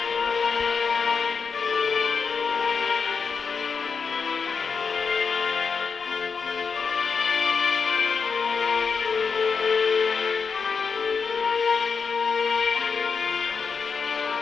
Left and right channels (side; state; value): right; quieter; 5.6 dB